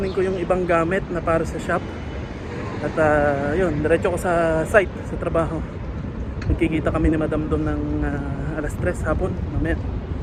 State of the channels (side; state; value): both; identical; correlation 1.00